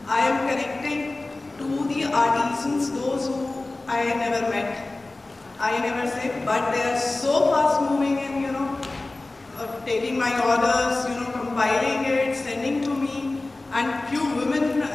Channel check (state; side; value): quieter; right; 3.0 dB